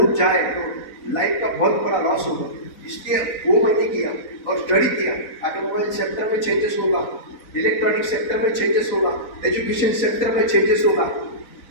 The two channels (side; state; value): right; late; 4.0 ms